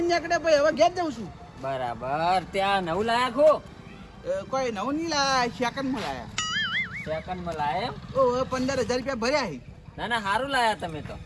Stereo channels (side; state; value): both; identical; correlation 1.00